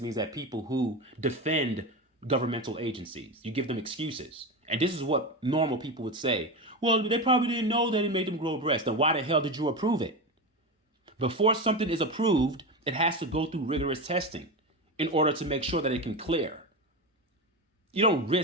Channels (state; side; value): normal; both; correlation 0.19